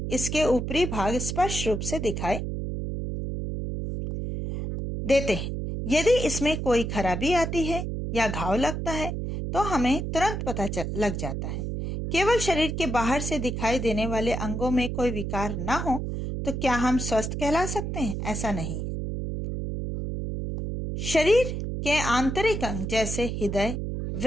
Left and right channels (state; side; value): noise; right; hum, 4 dB below the sound